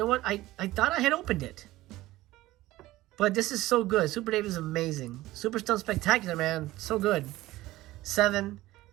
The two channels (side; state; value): left; quieter; 17.1 dB